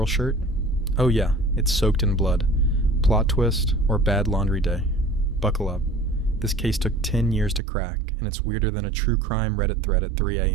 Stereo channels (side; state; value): left; drops out; at 7.6 s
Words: shirt? Oh yeah, it's soaked in blood. Plot twist or bad laundry day. Buckle up. This case took 10 years to crack, and it's weirder than a true crime Reddit thread at 3